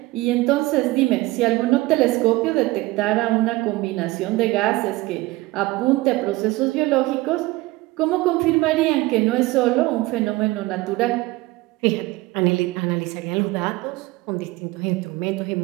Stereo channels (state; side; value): quieter; left; 20.1 dB